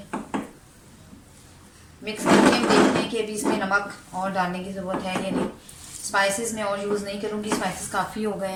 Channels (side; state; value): both; identical; correlation 1.00